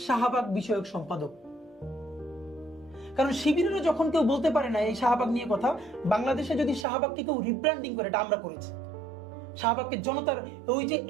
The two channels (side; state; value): left; drops out; at 6.9 s